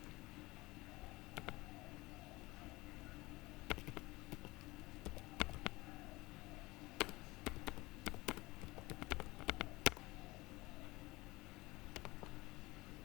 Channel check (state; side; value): quieter; right; 21.3 dB